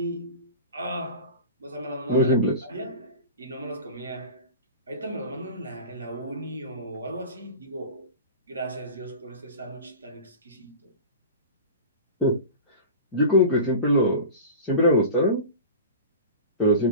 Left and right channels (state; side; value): inverted; both; correlation -0.33